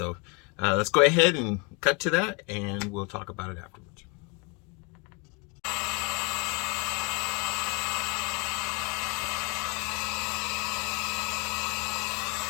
let's go ahead and cut to that and we'll talk about it afterwards.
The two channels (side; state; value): right; quieter; 31.4 dB